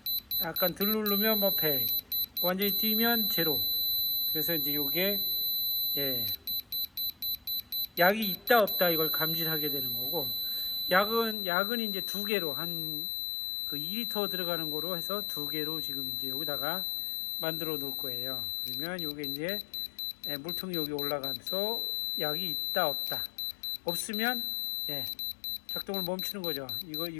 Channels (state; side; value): drops out; right; at 11.4 s